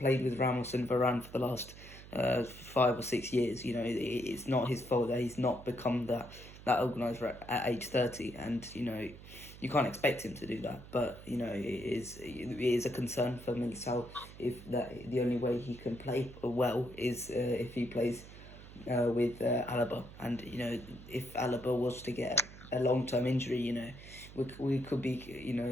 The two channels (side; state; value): right; noise; hum, 16 dB below the sound